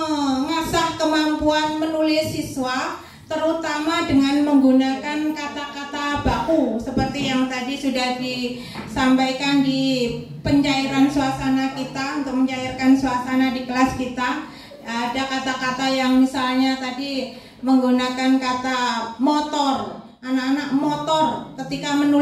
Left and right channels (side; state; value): both; identical; correlation 1.00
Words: kemampuan menulis siswa, terutama dengan menggunakan kata-kata baku seperti yang tadi sudah disampaikan di pencairan suasana kita, untuk mencairkan suasana di kelas kita. Ada kata-kata yang misalnya tadi menggunakan kata motor. Anak-anak motor ketika